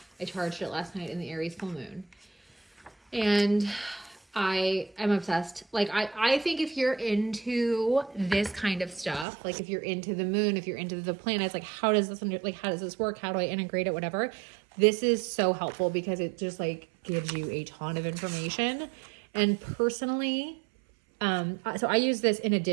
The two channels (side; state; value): left; drops out; at 9.2 s